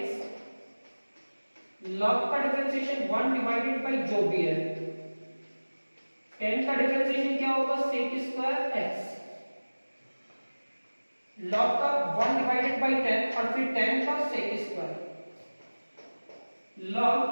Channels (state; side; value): inverted; both; correlation -1.00